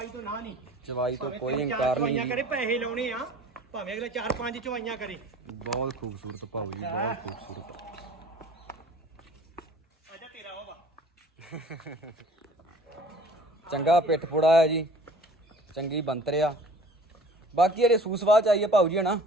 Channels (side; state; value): both; normal; correlation 0.47